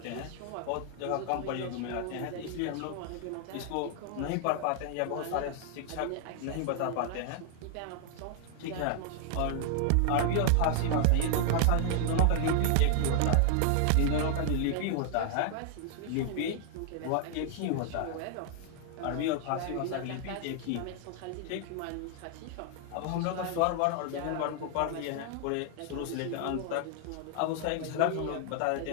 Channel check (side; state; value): both; different; correlation 0.00